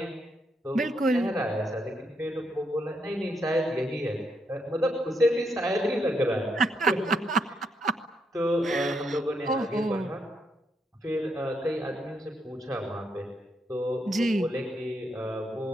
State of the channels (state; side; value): normal; both; correlation 0.78